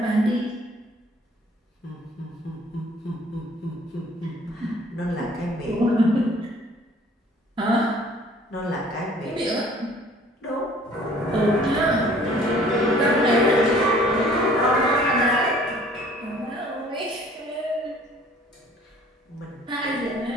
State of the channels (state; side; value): normal; both; correlation 0.54